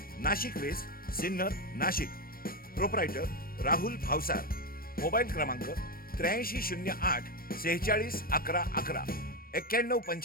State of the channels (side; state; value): right; late; 0.42 ms